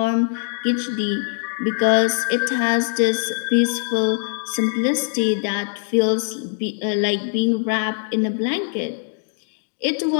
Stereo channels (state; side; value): silent; right; 64 dB below the other